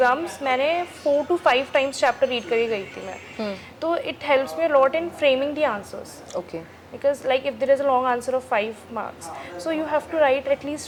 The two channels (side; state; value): both; identical; correlation 1.00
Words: मैंने 4 to 5 टाइम्स चैप्टर रीड करके गई थी मैं। तो it helps me lot in framing the answers, okay because like if there is a long answer of 5 marks, so you have to write at